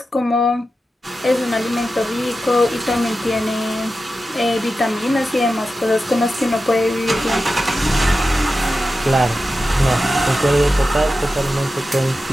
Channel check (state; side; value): normal; both; correlation 0.92